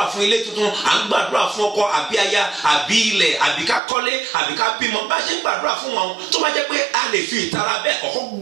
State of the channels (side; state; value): left; drops out; at 3.8 s